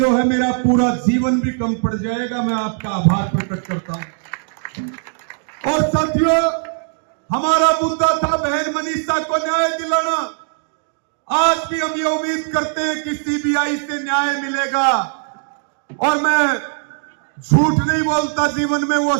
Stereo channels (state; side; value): silent; left; digital silence